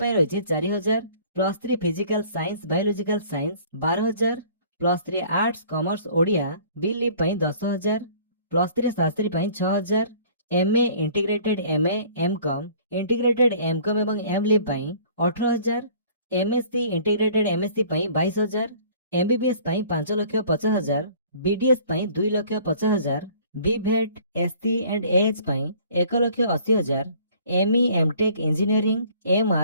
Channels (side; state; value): both; inverted; correlation -0.52